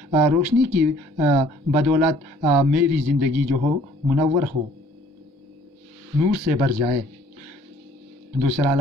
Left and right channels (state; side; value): normal; both; correlation 0.57